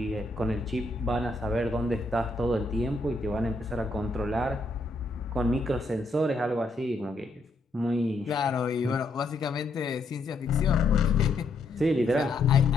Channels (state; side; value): quieter; right; 3.1 dB